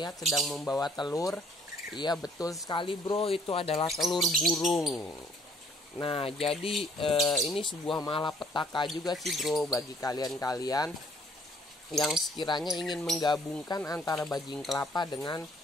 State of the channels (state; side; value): normal; both; correlation 0.61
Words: sedang membawa telur. Iya betul sekali bro, itu adalah telur burung. Nah jadi ini sebuah malapetaka juga sih bro bagi kalian-kalian yang sekiranya ingin menggabungkan antara bajing kelapa dengan